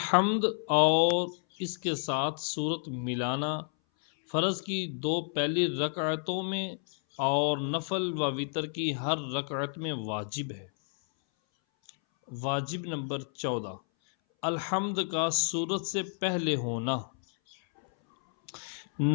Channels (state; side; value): silent; right; 58 dB below the other